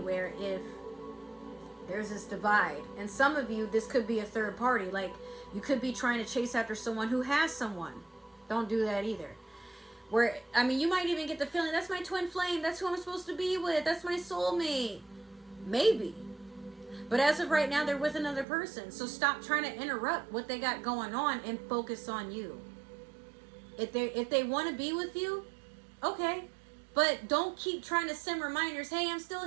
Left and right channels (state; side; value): drops out; left; at 18.4 s